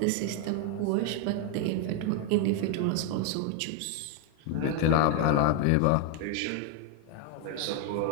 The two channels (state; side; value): different; both; correlation 0.01